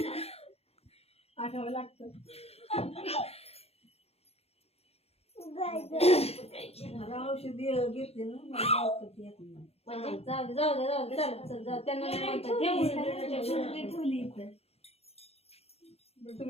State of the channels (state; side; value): late; right; 0.29 ms